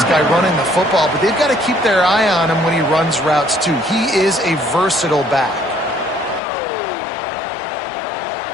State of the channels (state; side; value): drops out; right; at 6.4 s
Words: guy running the football, but they've got to keep their eye on him when he runs routes too. He is a versatile back.